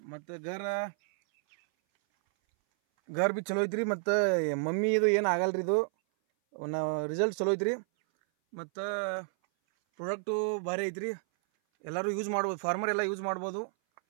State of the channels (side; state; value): left; silent; 57 dB below the other